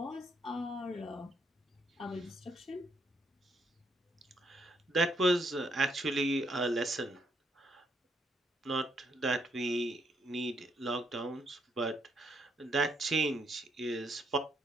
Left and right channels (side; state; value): both; normal; correlation 0.73